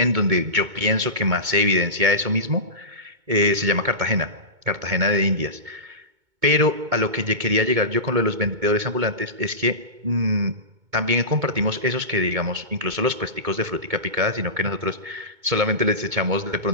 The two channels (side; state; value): left; late; 2.2 ms